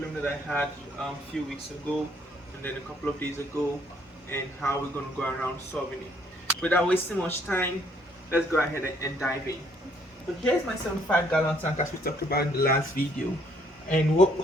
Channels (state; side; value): normal; both; correlation 0.66